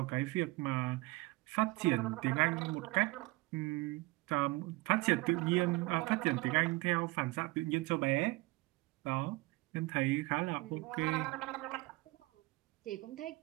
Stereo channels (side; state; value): left; quieter; 22.8 dB